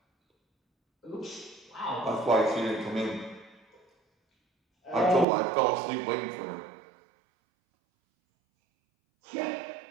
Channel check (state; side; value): drops out; left; at 5.2 s